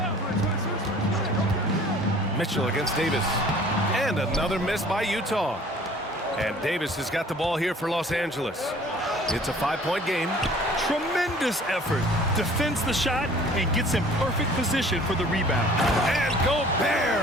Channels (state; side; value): normal; both; correlation 0.51